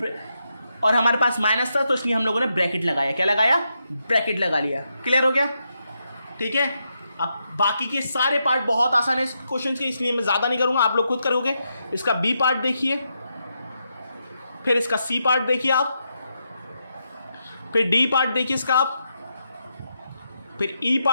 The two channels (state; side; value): inverted; both; correlation -0.83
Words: और हमारे पास माइनस था तो इसलिए हम लोगों ने ब्रैकेट लगाया। क्या लगाया? ब्रैकेट लगा लिया। क्लियर हो गया? ठीक है। अब बाकी के सारे पार्ट बहुत आसान है इस क्वेश्चन के, इसलिए मैं ज़्यादा नहीं करूँगा, आप लोग खुद करोगे। इसका बी पार्ट देखिए, फिर इसका सी पार्ट देखिए आप, फिर डी पार्ट देखिए इसका आप, फिर ई